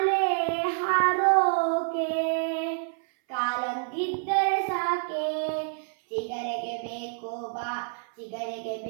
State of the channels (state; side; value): silent; left; 60 dB below the other